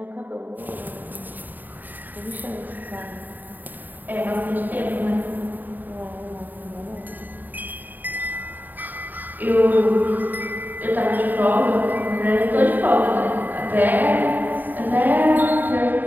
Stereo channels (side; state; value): left; late; 0.088 ms